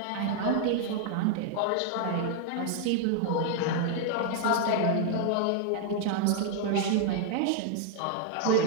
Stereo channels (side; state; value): both; different; correlation 0.00